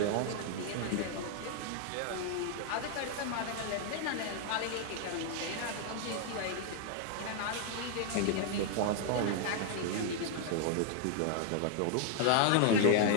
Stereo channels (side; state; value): both; different; correlation 0.00